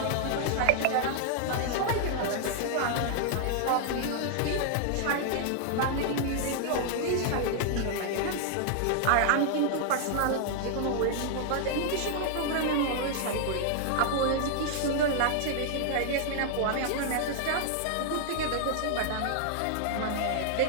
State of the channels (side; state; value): both; different; correlation -0.01